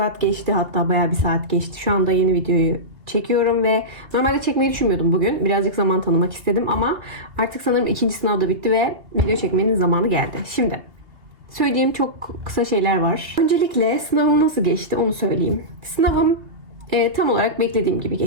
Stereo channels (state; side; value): late; left; 2.6 ms